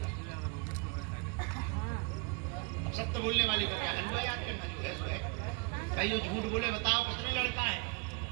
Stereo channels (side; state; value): left; quieter; 31.7 dB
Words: अब सत्य बोलने वाले को क्या हलवा याद करना, जो है सो है। भाई जो झूठ बोले बताओ कितने लड़का है?